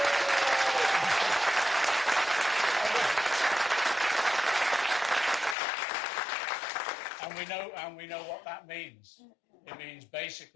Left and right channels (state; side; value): drops out; right; at 5.6 s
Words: And we know what that means. It means